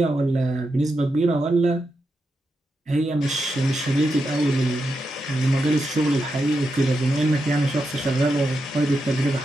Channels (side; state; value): both; normal; correlation 0.86